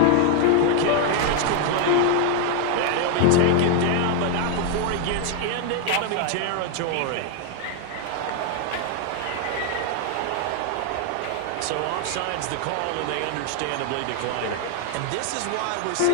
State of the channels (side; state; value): both; different; correlation 0.00